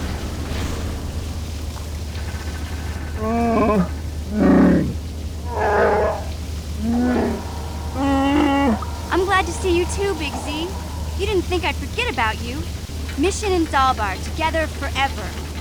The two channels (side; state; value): both; identical; correlation 1.00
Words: I'm glad to see you too, Big Z. You didn't think I'd forget about you. Mission in Zaalbar, together forever.